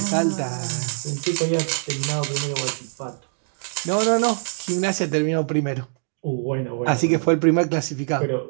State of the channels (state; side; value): silent; left; digital silence